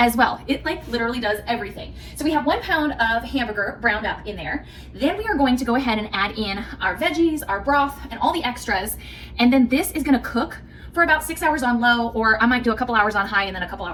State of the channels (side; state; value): both; identical; correlation 1.00